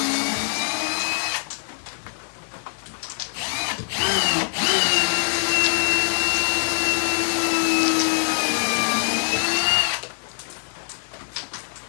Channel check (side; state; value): right; silent; digital silence